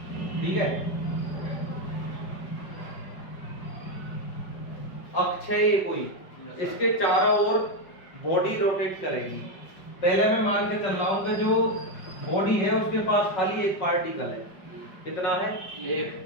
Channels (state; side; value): late; right; 5.3 ms